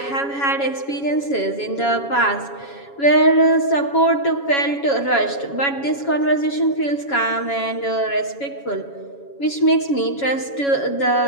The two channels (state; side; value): late; right; 7.2 ms